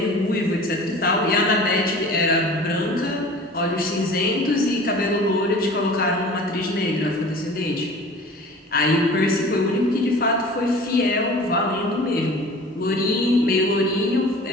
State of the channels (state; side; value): normal; both; correlation 0.42